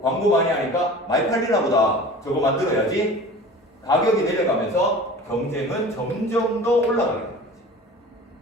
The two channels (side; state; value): both; normal; correlation 0.40